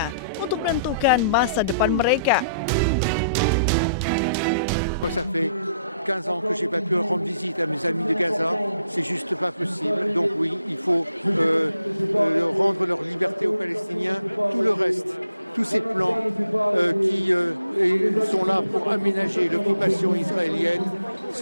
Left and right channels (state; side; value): inverted; both; correlation -0.72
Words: untuk menentukan masa depan mereka. Ça fait 15 ans que je n'ai pas pu rendre visite à mes amis de Gaza, c'est juste pas possible. Donc oui, il faut rendre leur liberté aux Palestiniens. Tout le reste, tous ces plans qui sont là pour aménager l'occupation israélienne,